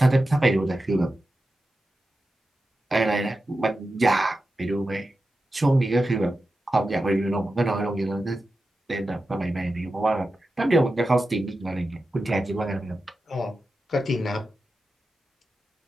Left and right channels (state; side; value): normal; both; correlation 0.92